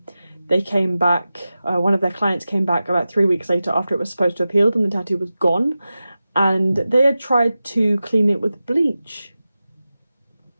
they came back, one of their clients came back about 3 weeks later after it was supposed to have healed and the tattoo was gone. And they had tried to clean it with bleach.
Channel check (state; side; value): inverted; both; correlation -0.94